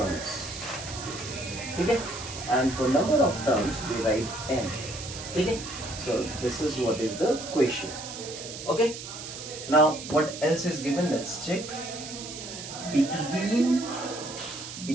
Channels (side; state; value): right; noise; hiss, 10 dB below the sound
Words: Okay? And for number of terms we write n. Okay? So this is what is the question. Okay? Now what else is given? Let's check. Between